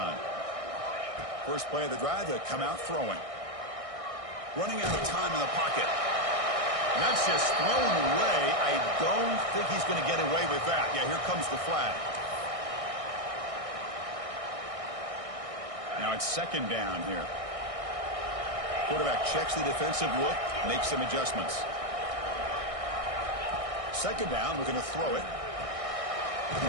First play of the drive, they come out throwing. Running out of time in the pocket. And that's just thrown away. I don't think he's going to get away with that. Yeah, here comes the flag. Now it's second down here. Quarterback checks the defensive look, makes some adjustments. Second down, we're going to throw it.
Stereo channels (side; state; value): left; late; 1.6 ms